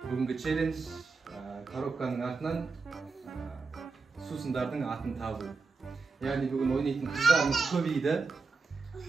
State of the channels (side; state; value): left; quieter; 4.2 dB